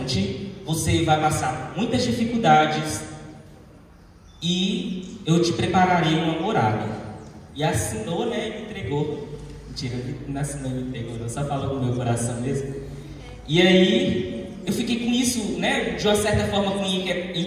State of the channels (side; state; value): both; identical; correlation 1.00